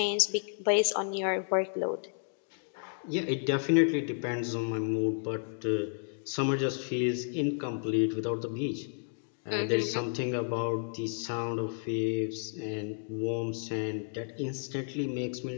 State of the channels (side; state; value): right; silent; 57 dB below the other